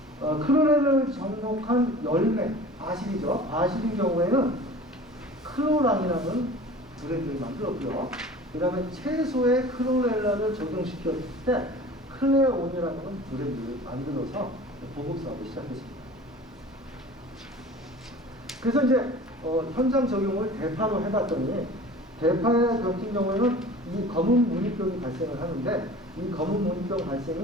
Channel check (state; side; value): normal; both; correlation 0.41